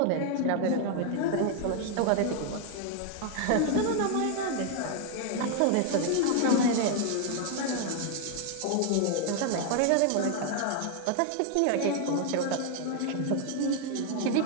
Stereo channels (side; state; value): both; different; correlation 0.00